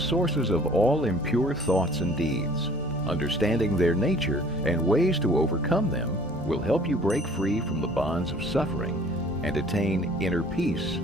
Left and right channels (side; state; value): both; normal; correlation 0.52